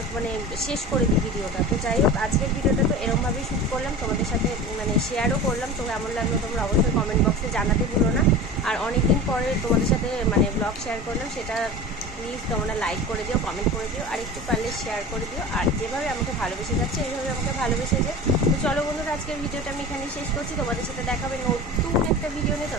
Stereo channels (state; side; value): normal; both; correlation 0.34